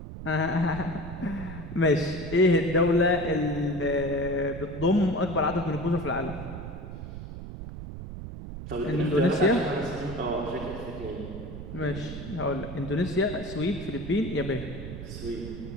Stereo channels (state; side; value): noise; right; rumble, 9 dB below the sound